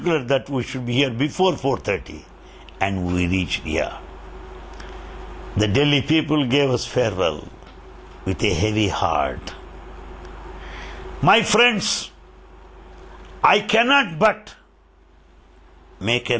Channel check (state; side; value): identical; both; correlation 1.00